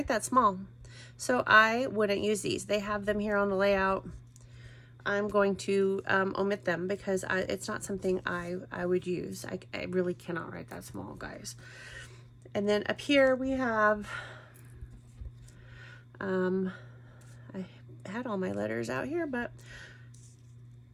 that small, so I wouldn't use these. They have them here on the layout. I'm going to omit them because it's not something I would use. I really cannot write that small, guys. And then up here we have, I had all my letters out here, but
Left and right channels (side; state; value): both; identical; correlation 1.00